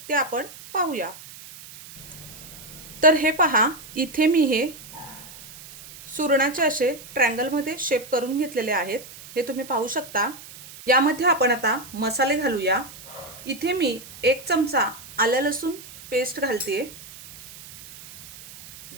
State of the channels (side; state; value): right; noise; hiss, 17 dB below the sound